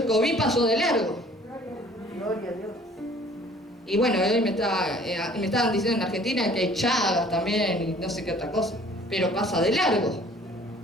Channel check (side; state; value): both; normal; correlation 0.53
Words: COVID pasó de largo. Gloria a Dios. Y bueno, hoy me estaban diciendo en Argentina que hay chagas también y no sé qué otra cosa. Pero pasa de largo.